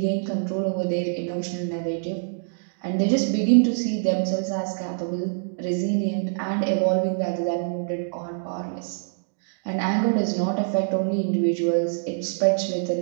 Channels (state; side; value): silent; left; digital silence